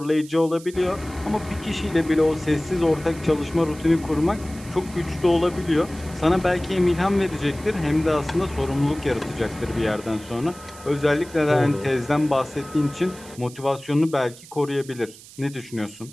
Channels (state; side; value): noise; right; hiss, 19 dB below the sound